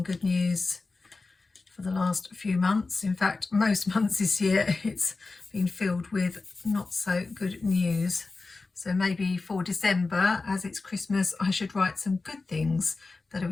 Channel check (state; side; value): quieter; right; 3.8 dB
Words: good news for the last few months. In fact, most months this year it's been filled with not so good news. So maybe for December, as it's Christmas, I should write some good things that are